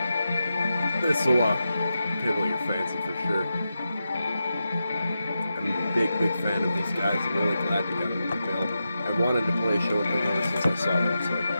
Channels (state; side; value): inverted; both; correlation -0.90